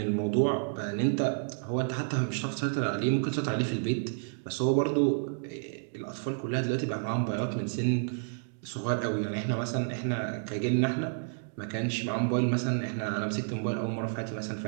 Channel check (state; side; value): silent; left; digital silence